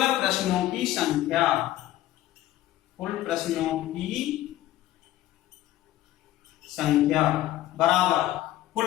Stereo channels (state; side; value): quieter; right; 14.6 dB